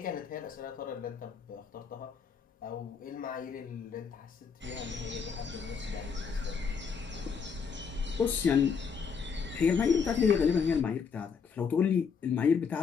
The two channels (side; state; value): right; quieter; 6.1 dB